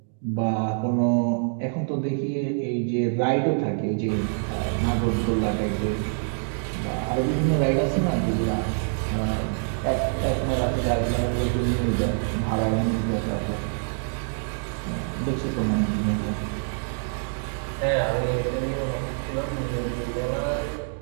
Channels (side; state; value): left; silent; digital silence